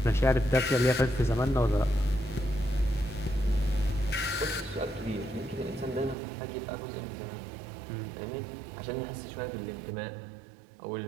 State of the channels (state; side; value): drops out; left; at 6.2 s